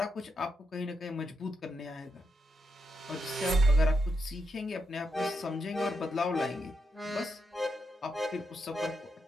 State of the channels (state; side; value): normal; both; correlation 0.83